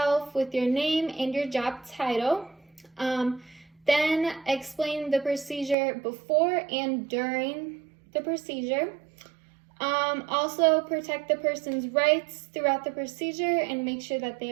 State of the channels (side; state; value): left; drops out; at 5.8 s